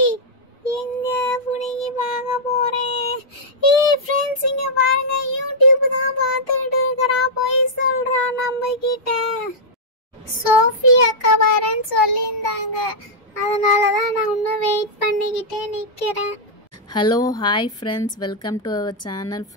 எங்க புடிங்கி பார்க்க போறேன். ஃப்ரெண்ட்ஸ், இங்க பாருங்க, யூடியூப் தான் பார்த்துட்டு இருக்கறா. போய் சொல்றா நம்ம கிட்ட. சோஃபி அக்கா வரேன்னு சொல்லியிருந்தாங்க, அதனால தான் நான் இன்னும் வெயிட் பண்ணிக்கிட்டே நிற்கிறேன். Hello, hi friends, welcome to our channel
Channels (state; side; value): normal; both; correlation -0.07